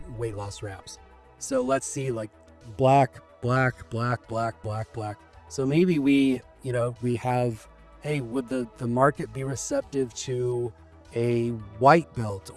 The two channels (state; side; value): identical; both; correlation 1.00